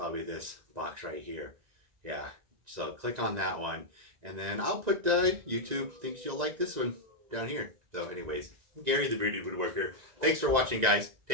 this box right here. Yeah, so click on that one, and then I'll put YouTube thinks you'll like this one down here. So anyways, I'm Gary the Bearded Woodworker. Thanks for watching, guys.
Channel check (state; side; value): late; left; 1.9 ms